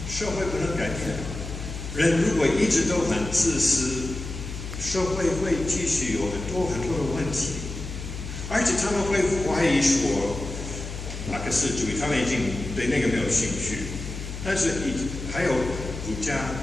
社会不能改变。人如果一直都很自私，社会会继续有很多的问题，而且他们会怀疑说马克思主义，他们已经对那个没有兴趣。但是还有儒家、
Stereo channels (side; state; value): left; noise; hum, 8 dB below the sound